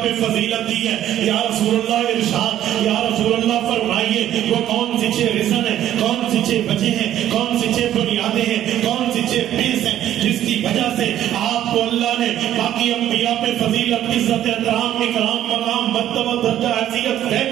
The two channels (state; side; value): quieter; left; 11.9 dB